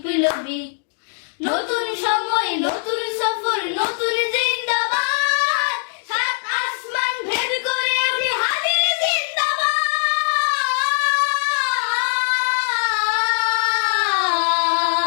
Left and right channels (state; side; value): silent; right; digital silence